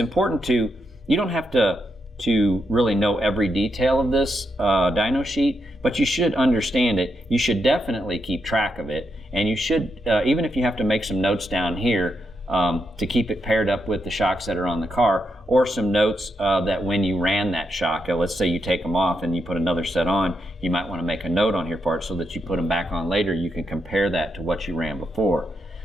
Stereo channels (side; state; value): both; normal; correlation 0.82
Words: you don't have to really know every detail of this dyno sheet, but you should understand it. You should definitely keep track of it, and you should, even if you have to make some notes down here to keep it paired up with the shocks that are on the car, or some notes that when you ran that shock, let's say you take them off and you put another set on, you might want to make a note on here for it so that you put them back on later. You can compare that to what you ran before.